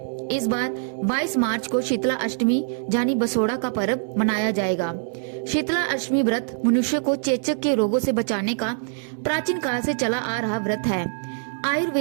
इस बार 22 मार्च को शीतला अष्टमी यानी बसोड़ा का पर्व मनाया जाएगा। शीतला अष्टमी व्रत मनुष्य को चेचक के रोगों से बचाने का प्राचीन काल से चला आ रहा व्रत है।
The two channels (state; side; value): silent; left; digital silence